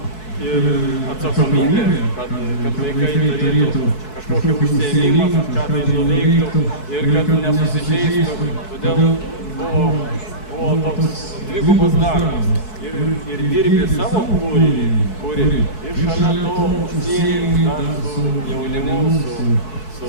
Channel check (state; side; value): late; right; 4.6 ms